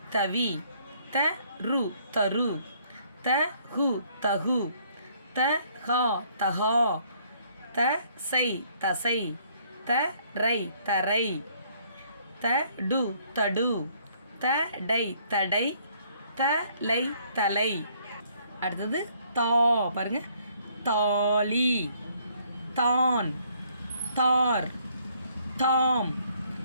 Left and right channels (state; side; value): inverted; both; correlation -0.65